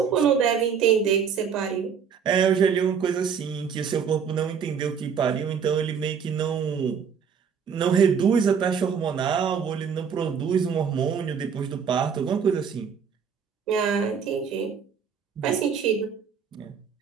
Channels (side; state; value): left; quieter; 6.9 dB